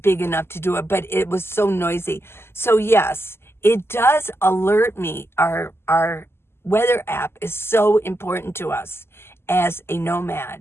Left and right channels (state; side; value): late; right; 0.12 ms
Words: big enough to do it, but it was so noisy. So yes, it does alert me. Our weather app is so important to us as a